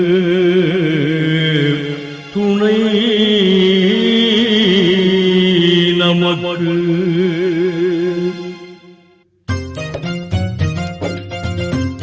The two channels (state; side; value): identical; both; correlation 1.00